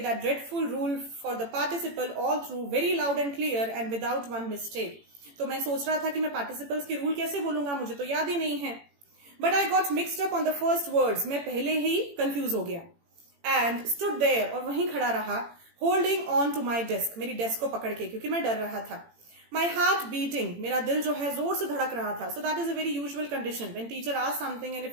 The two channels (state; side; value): late; left; 18 ms